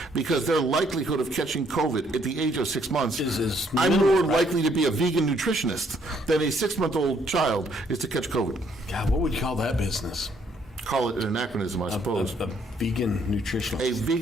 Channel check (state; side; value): normal; both; correlation 0.68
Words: because their likelihood of catching COVID at the age of 6 months, Is I'm minimal, more right? likely to be a vegan nutritionist than a 6-month-old child is to catch COVID. God, what would you call that business? Call it an anachronism, I suppose. A vegan nutritionist. A